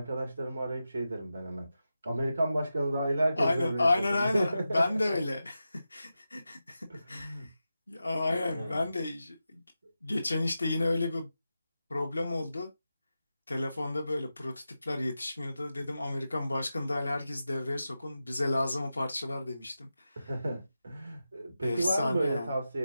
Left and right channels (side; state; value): both; inverted; correlation -0.91